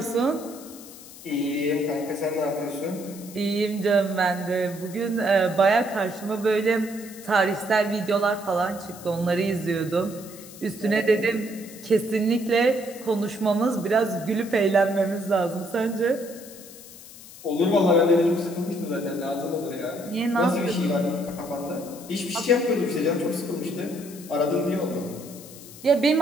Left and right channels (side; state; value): left; noise; hiss, 17 dB below the sound